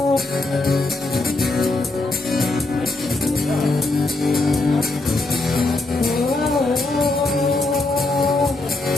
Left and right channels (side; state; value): right; quieter; 3.1 dB